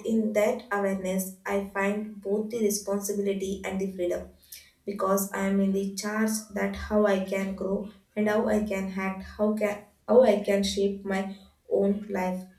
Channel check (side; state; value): both; identical; correlation 1.00